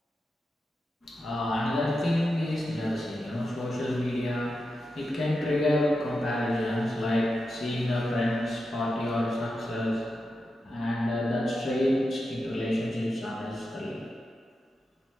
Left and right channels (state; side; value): normal; both; correlation 0.89